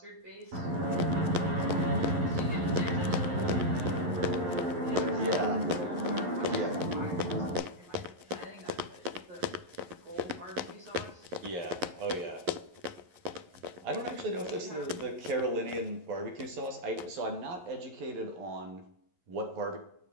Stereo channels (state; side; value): late; left; 11 ms